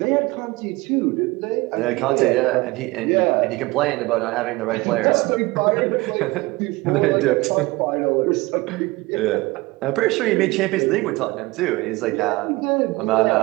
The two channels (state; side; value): quieter; left; 22.1 dB